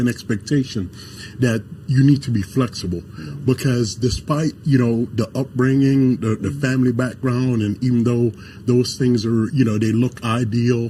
an expectation that you need to be flexible, because despite, the upbringing, the family background, and even though those things are, they look ideal,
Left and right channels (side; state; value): both; identical; correlation 1.00